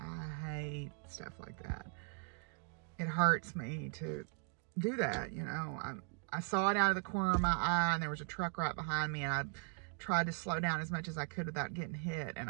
hate stuff like that. It hurts me to do that, you know. I saw it out of the corner of my eye, and there was a truck right behind me, and I tried to slow down as much as I could without getting hit, and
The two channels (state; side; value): quieter; left; 38.5 dB